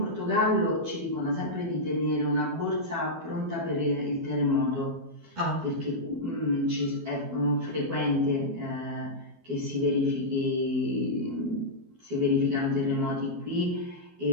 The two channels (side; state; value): left; late; 12 ms